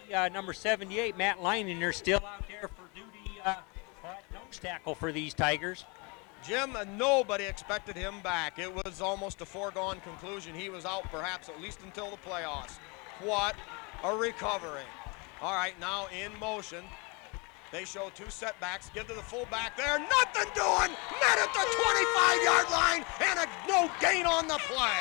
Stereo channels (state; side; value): quieter; right; 30.4 dB